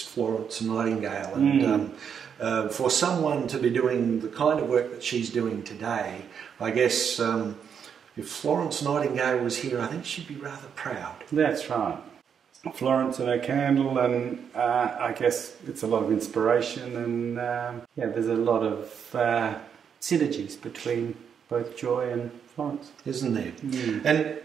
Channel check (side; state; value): left; quieter; 7.5 dB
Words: Florence Nightingale, and for someone to be doing the kind of work that she's doing today, I guess if Florence Nightingale was here, I think she'd be rather proud. That's right. Florence and her candle, and I guess it's a lot of inspiration, and there's a lot of synergies between both Joy and Florence. Isn't there?